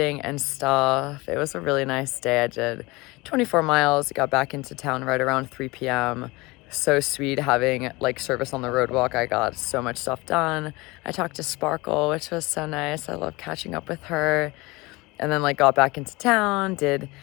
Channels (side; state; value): right; quieter; 23.2 dB